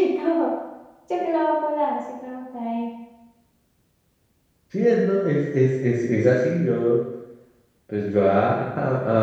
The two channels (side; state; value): both; identical; correlation 1.00